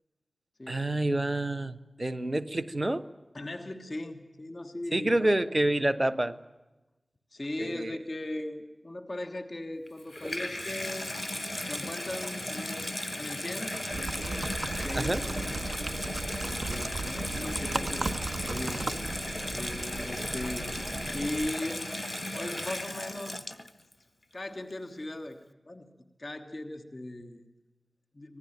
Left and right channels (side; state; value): both; normal; correlation 0.96